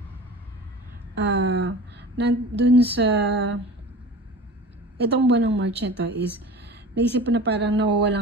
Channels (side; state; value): both; normal; correlation 0.36